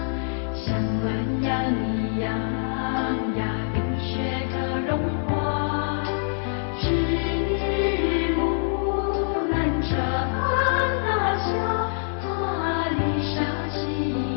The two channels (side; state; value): right; silent; 57 dB below the other